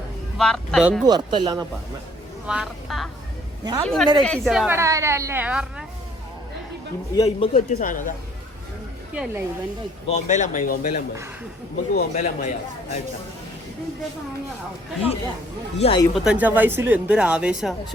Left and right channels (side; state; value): both; normal; correlation 0.60